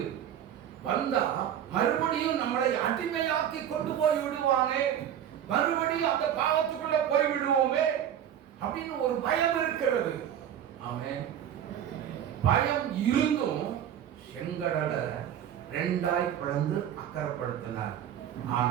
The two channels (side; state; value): left; quieter; 10.0 dB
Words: வந்தா மறுபடியும் நம்மளை அடிமையாக்கி கொண்டு போய் விடுவானே, மறுபடியும் அந்த பாவத்துக்குள்ள போய் விடுவோமே அப்படின்னு ஒரு பயம் இருக்கிறது. ஆமென். பயம் இருந்தும் செங்கடலை ரெண்டாய் பிளந்து அக்கறைப்படுத்தினார்.